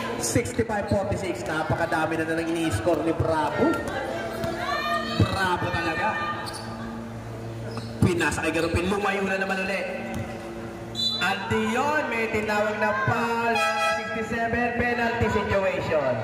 65-46, napakadami na lang ini-score ni Bravo. Bravo talaga. Pinasa kay Garupin, lumayo na naman ulit. At diyon, may tinawag na foul. 67, penalty situation.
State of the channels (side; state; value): both; identical; correlation 1.00